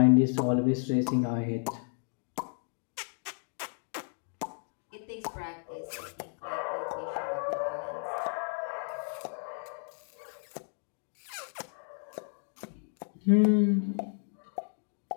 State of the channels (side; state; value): right; silent; 56 dB below the other